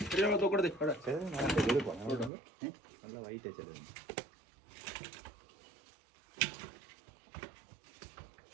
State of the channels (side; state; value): left; drops out; at 2.3 s